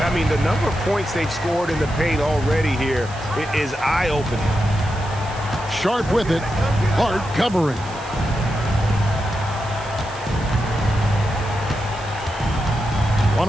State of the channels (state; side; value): noise; right; hiss, 20 dB below the sound